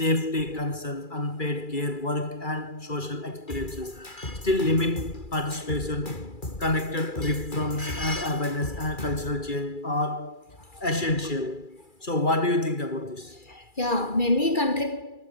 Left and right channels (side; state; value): right; late; 2.3 ms